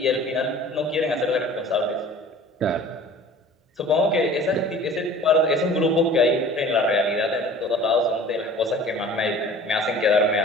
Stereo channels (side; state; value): both; normal; correlation 0.45